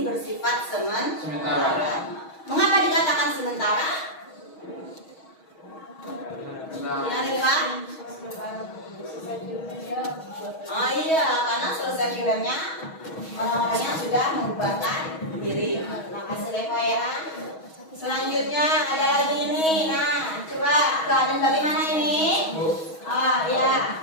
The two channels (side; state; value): right; late; 6.3 ms